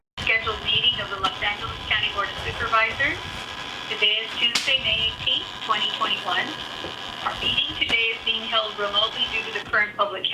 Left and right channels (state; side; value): identical; both; correlation 1.00